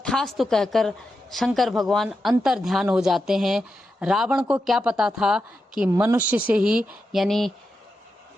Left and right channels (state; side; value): normal; both; correlation 0.88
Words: कहकर शंकर भगवान अंतर ध्यान हो जाते हैं। रावण को क्या पता था कि मनुष्य से ही, यानी